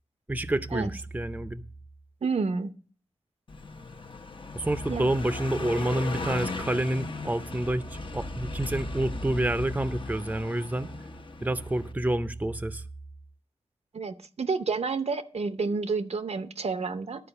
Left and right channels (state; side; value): normal; both; correlation 0.82